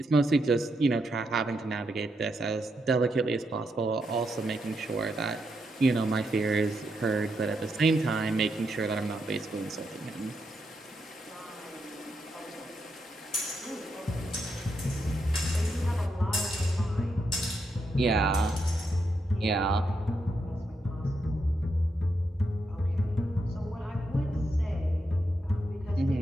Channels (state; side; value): normal; both; correlation 0.82